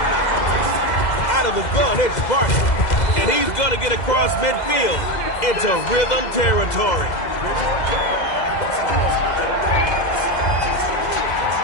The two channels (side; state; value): right; late; 2.0 ms